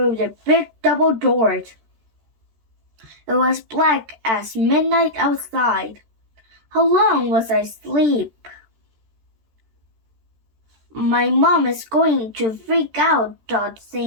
the big double doors. It was black as midnight outside. How long was I asleep? My mom is going to freak out, thought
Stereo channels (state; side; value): late; left; 13 ms